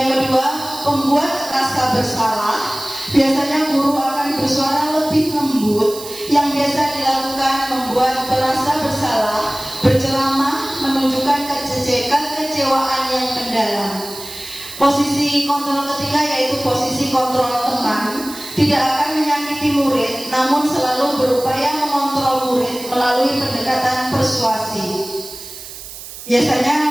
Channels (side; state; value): right; noise; hiss, 13 dB below the sound